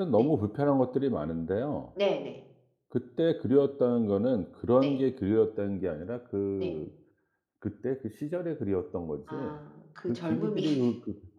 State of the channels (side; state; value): both; identical; correlation 1.00